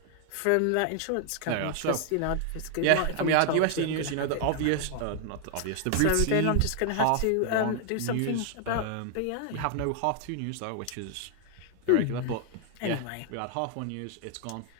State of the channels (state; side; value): different; both; correlation 0.00